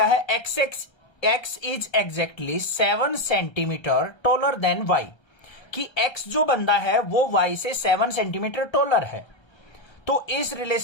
है, X is exactly 7 centimetre taller than Y. कि x जो बंदा है वो y से 7 सेंटीमीटर टॉलर है। तो इस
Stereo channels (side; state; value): right; late; 1.3 ms